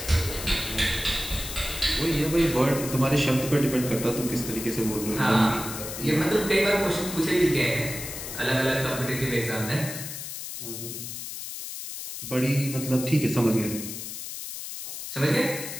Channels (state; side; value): noise; left; hiss, 8 dB below the sound